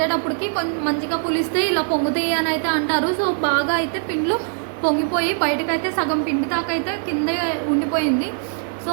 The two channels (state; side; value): silent; left; 65 dB below the other